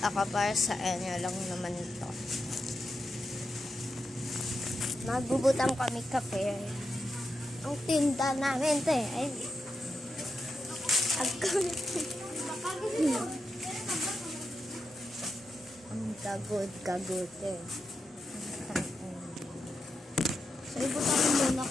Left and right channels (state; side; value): normal; both; correlation 0.87